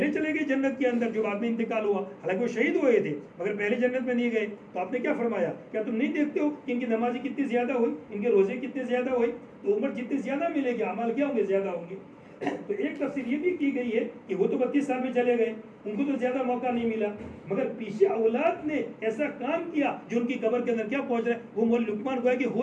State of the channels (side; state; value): both; identical; correlation 1.00